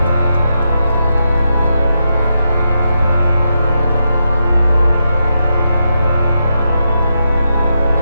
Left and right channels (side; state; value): both; inverted; correlation -0.85